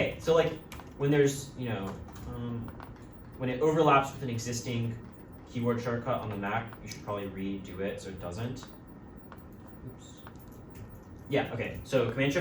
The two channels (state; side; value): identical; both; correlation 1.00